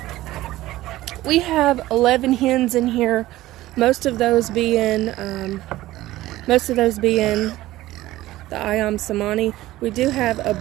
We have 11 hens in here. Most of those being the Ayam Samani. We do have a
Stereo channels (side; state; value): left; quieter; 16.3 dB